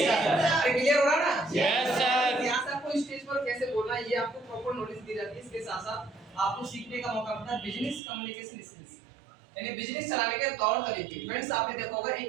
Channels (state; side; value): drops out; left; at 8.0 s